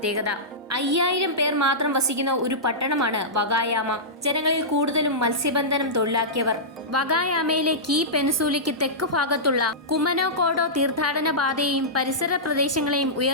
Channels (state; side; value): normal; both; correlation -0.15